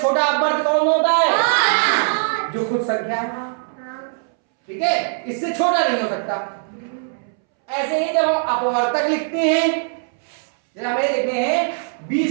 अपवर्त्य कौन होता है? जो खुद संख्या है, ठीक है, इससे छोटा नहीं हो सकता। ऐसे ही जब हम अपवर्तक लिखते हैं, जब हमें लिखते हैं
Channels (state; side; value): silent; left; 65 dB below the other